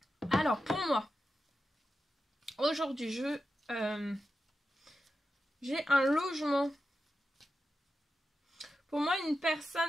Alors pour moi, aujourd'hui, j'ai un logement. Pour moi, une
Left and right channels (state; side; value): normal; both; correlation 0.91